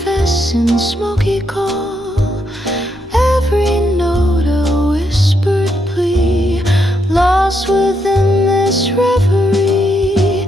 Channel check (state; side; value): normal; both; correlation 0.79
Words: in smoky call, every note a whispered plea, lost within this reverie.